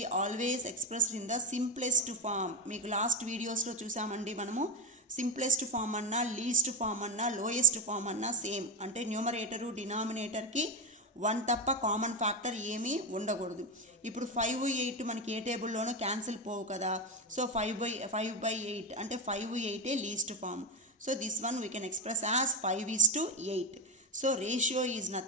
always expressed in the simplest form. మీకు last వీడియోస్లో చూసామండి మనము, simplest form అన్నా, least form అన్నా, lowest form అన్నా same. అంటే numerator డినామినేటర్కి 1 తప్ప కామన్ ఫ్యాక్టర్ ఏమీ ఉండకూడదు. ఇప్పుడు 5, 8 మనకి ఏ టేబుల్లోనూ క్యాన్సిల్ పోవు కదా. సో 5/8 అంటే 5, 8 least form. So this one we can express as 5:8. So ratio is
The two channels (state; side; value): normal; both; correlation 0.12